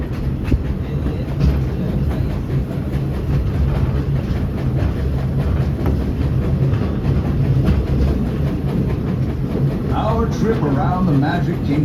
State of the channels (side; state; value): both; identical; correlation 1.00